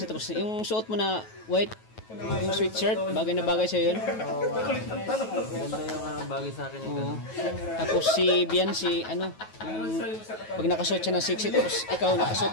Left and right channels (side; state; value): right; late; 9.3 ms